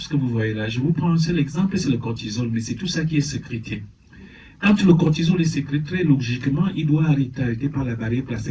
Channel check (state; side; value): identical; both; correlation 1.00